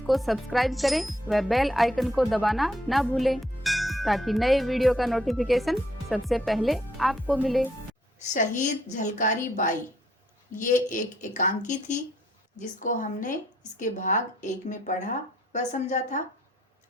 सब्सक्राइब करें व बेल आइकन को दबाना ना भूलें ताकि नए वीडियो का नोटिफिकेशन सबसे पहले आपको मिले। शहीद झलकारी बाई ये एक एकांकी थी जिसको हमने इसके भाग 1 में पढ़ा व समझा था।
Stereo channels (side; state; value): both; normal; correlation 0.69